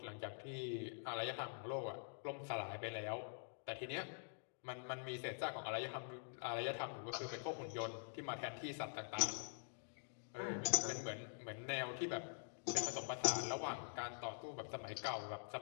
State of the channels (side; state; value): right; silent; digital silence